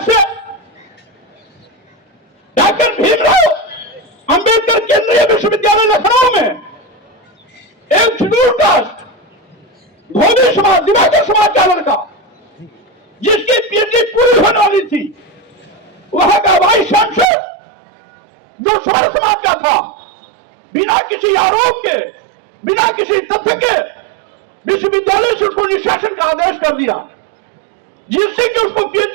से डॉक्टर भीमराव अंबेडकर केंद्रीय विश्वविद्यालय लखनऊ में एक शेड्यूल कास्ट धोबी समाज, दिवाकर समाज का लड़का, जिसकी पीएचडी पूरी होने वाली थी, वहां का वाइस चांसलर जो समर समाज का था, बिना किसी आरोप के, बिना किसी तथ्य के विश्वविद्यालय से उसको निष्कासन का आदेश कर दिया, जिससे कि उसको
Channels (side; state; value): left; drops out; at 17.2 s